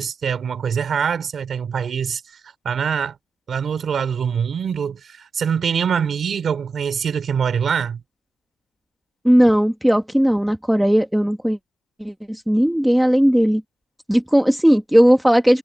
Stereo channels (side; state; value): both; normal; correlation 0.96